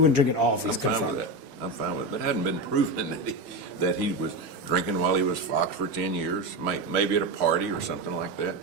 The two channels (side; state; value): both; normal; correlation 0.17